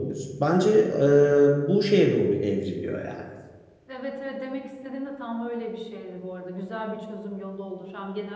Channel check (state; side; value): identical; both; correlation 1.00